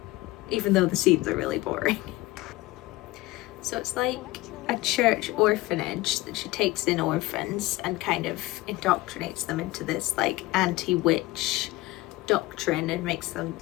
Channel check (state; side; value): quieter; right; 19.3 dB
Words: Even though the scenes are really boring. So it's like a church orphanage that she takes in orphans and kind of indoctrinates them into this like anti-witch doctrine and makes them